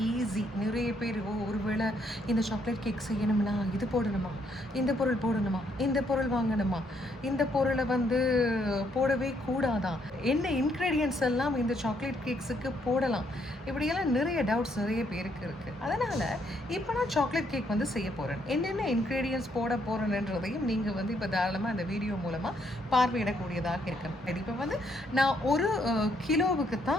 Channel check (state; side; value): normal; both; correlation 0.72